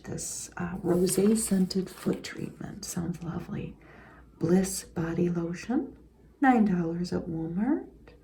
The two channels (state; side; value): identical; both; correlation 1.00